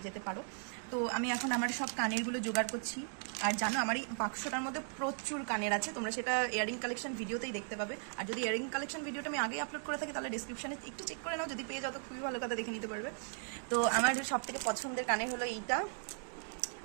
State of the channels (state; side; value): silent; left; 53 dB below the other